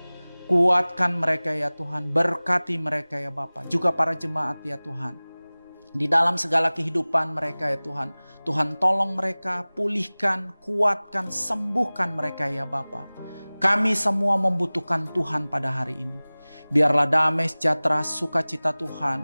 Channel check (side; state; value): both; inverted; correlation -1.00